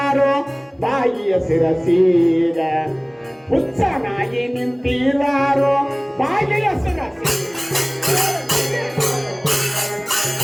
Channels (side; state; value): both; identical; correlation 1.00